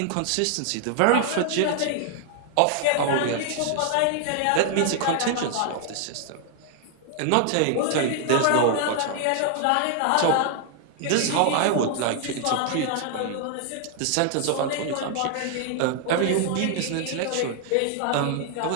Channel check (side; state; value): both; different; correlation 0.00